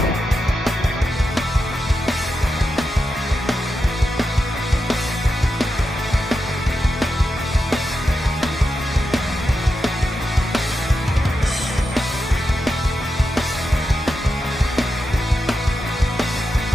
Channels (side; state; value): both; normal; correlation 0.88